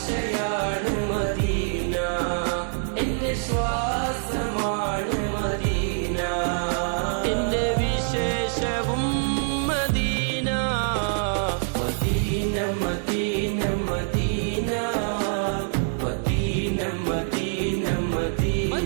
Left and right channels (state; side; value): silent; left; digital silence